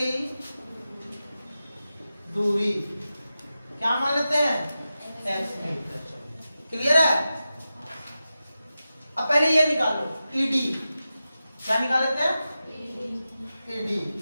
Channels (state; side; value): inverted; both; correlation -0.93